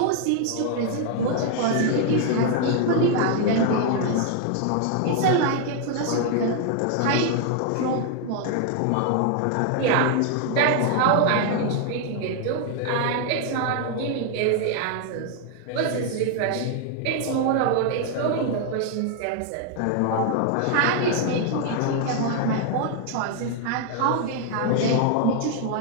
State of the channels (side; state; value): both; different; correlation 0.00